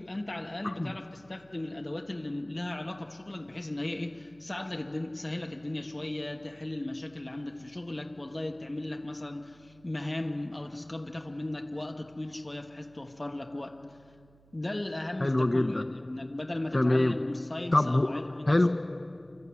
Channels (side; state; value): right; noise; hum, 27 dB below the sound